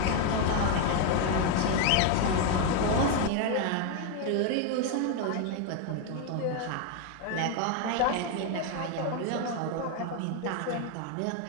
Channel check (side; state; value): both; different; correlation 0.01